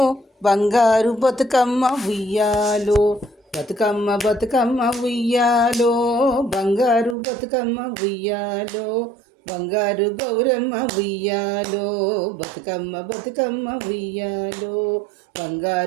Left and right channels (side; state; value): left; drops out; at 7.2 s